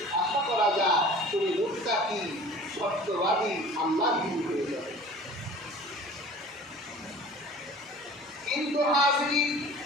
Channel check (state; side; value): normal; both; correlation 0.44